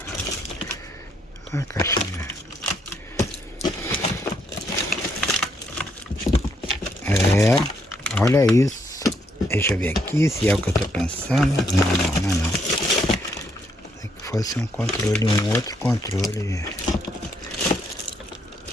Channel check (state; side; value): normal; both; correlation 0.73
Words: Olha a caixinha. Olha isso. Deixa eu ver aqui se é o que eu tô pensando. Não. Se que fosse um controle, um outro controle.